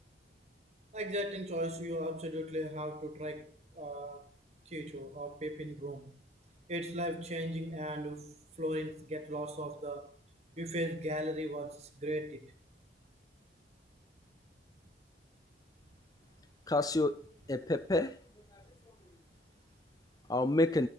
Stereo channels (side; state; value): both; normal; correlation 0.55